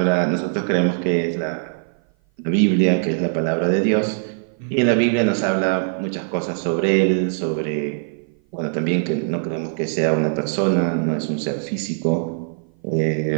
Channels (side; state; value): left; silent; 56 dB below the other